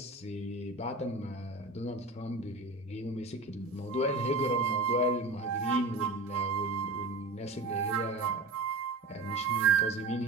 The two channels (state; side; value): quieter; left; 3.2 dB